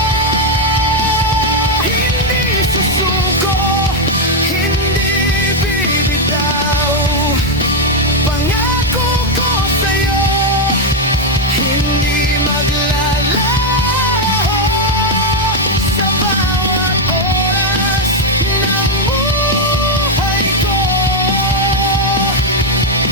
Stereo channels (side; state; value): both; normal; correlation 0.02